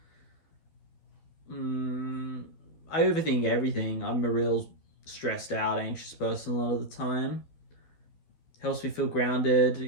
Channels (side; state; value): right; late; 12 ms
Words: I overthink everything. I'm a real stressed out, anxious person a lot of the time. Helps me feel grounded